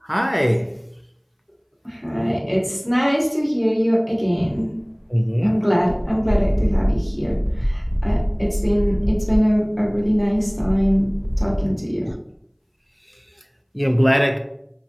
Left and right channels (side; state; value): both; identical; correlation 1.00